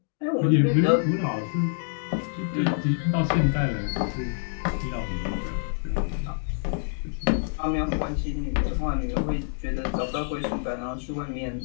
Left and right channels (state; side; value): silent; right; digital silence